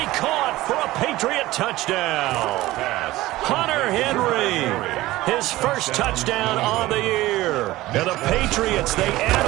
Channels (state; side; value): quieter; left; 17.4 dB